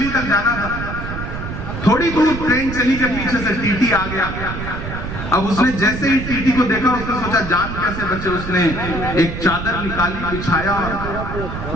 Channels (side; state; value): right; noise; rumble, 7 dB below the sound